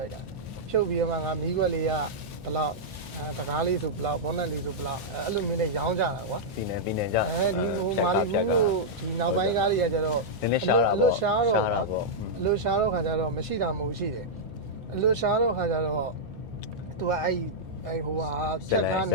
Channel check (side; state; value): both; normal; correlation -0.08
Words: ုက်တာဖြုတ်ပြီးတော့မှငါမီးခွက်လေးကဘလောက်တကားလေးဆိုဘလောက်ဘောနက်လေးဆိုဘလောက်အဲ့လိုမျိုးနဲ့ရောင်းကြတာကွာ ပြည်နယ်ကြ ဒီဟိုမာလီဘူးကိုဒီနောက်ပိုင်းကားတွေကကျတော့ နည်းနည်းရှားတာ အလွတ်ရှားတော့ ပေါ့ အလွတ်ရှားတော့ခါကျတော့မရှိတာမဟုတ်ရှိတယ်အလွတ်ရှားတော့ခါကျတော့သူကအဲ့ဟိုဟာချက်ကားန